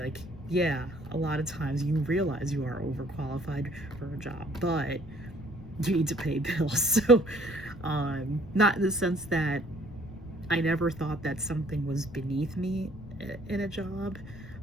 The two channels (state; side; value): noise; left; rumble, 15 dB below the sound